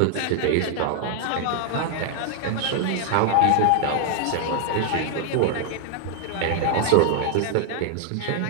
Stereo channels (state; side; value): different; both; correlation 0.00